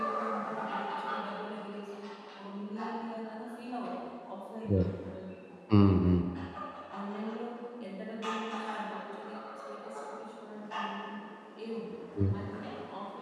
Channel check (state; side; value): identical; both; correlation 1.00